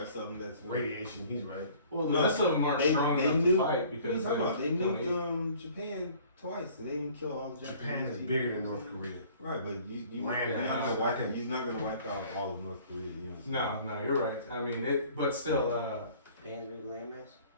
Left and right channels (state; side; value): inverted; both; correlation -0.52